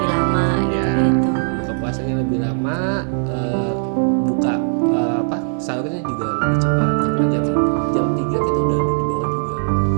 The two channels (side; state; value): left; silent; 61 dB below the other